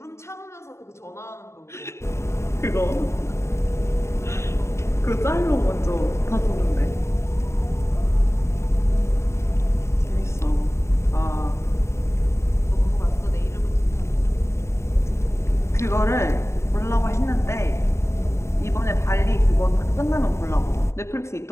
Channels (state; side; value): late; right; 0.13 ms